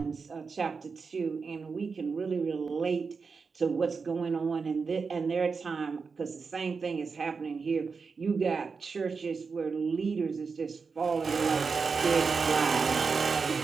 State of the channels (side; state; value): left; quieter; 5.0 dB